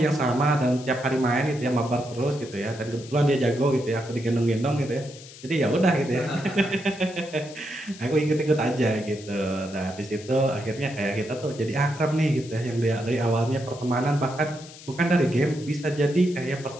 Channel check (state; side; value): noise; left; hiss, 18 dB below the sound